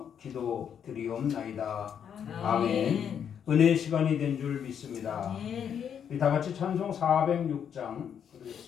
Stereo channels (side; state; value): right; quieter; 8.2 dB